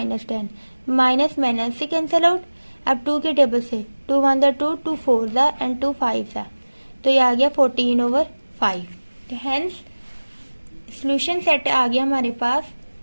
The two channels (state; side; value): inverted; both; correlation -1.00